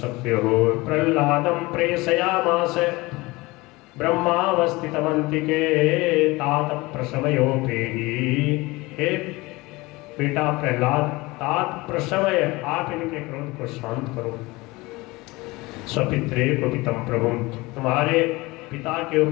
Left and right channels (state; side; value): quieter; right; 22.2 dB